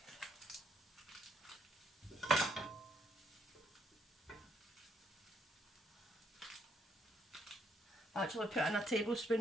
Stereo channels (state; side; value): normal; both; correlation 0.72